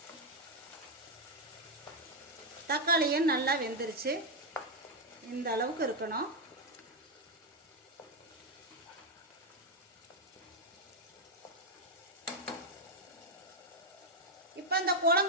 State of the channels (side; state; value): both; normal; correlation 0.01